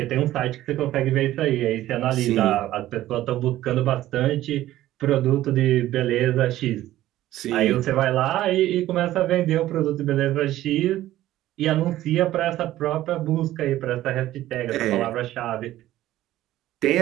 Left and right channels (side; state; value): left; quieter; 14.5 dB